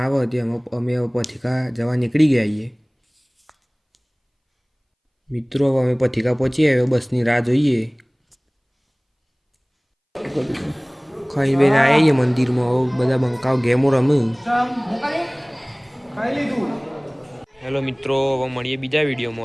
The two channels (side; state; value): both; identical; correlation 1.00